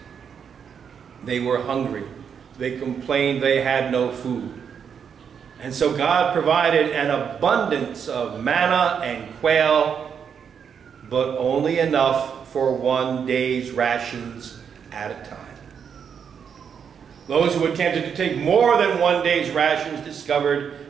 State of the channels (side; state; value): left; quieter; 7.2 dB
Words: They were hungry. They complained they had no food. And so God provided an abundance of manna and quail, but only enough for one day's rations at a time. Those who attempted to take more than one day's rations